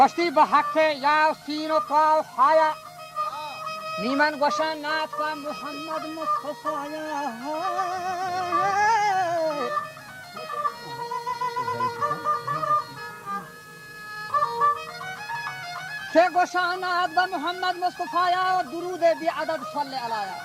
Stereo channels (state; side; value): identical; both; correlation 1.00